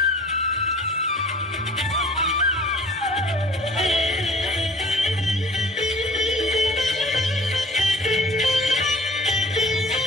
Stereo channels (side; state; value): both; normal; correlation 0.49